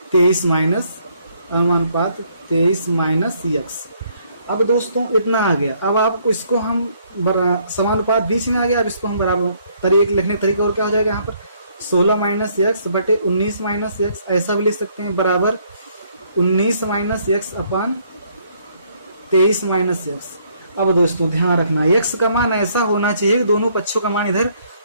23 माइनस अनुपात 23 माइनस x। अब दोस्तों इतना आ गया। अब आपको इसको हम समानुपात बीच में आ गया, अब इसको हम बराबर लिखने का तरीका और क्या हो जाएगा यहाँ पर 16 माइनस x बटे 19 माइनस x, ऐसा भी लिख सकते हैं बराबर 19 माइनस x अपान 23 माइनस x। अब दोस्तों ध्यान रखना x का मान ऐसा होना चाहिए कि दोनों पक्षों का मान इधर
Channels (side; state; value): both; inverted; correlation -0.67